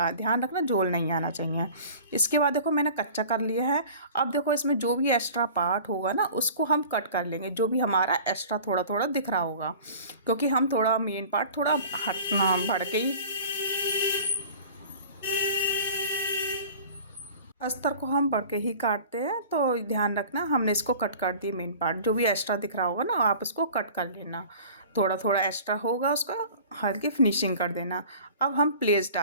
ध्यान रखना झोल नहीं आना चाहिए। इसके बाद देखो मैंने कच्चा कर लिया है। अब देखो इसमें जो भी एक्स्ट्रा पार्ट होगा ना उसको हम कट कर लेंगे, जो भी हमारा एक्स्ट्रा थोड़ा थोड़ा दिख रहा होगा, क्योंकि हम थोड़ा मेन पार्ट थोड़ा हटना बढ़ के ही अस्तर को हम बढ़ के ही काटते हैं। तो ध्यान रखना, हमने इसको कट कर दिए मेन पार्ट। जो भी एक्स्ट्रा दिख रहा होगा ना आप इसको कट कर लेना, थोड़ा थोड़ा एक्स्ट्रा होगा उसका हल्की फिनिशिंग कर देना। अब हम प्लेस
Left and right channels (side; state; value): both; inverted; correlation -0.43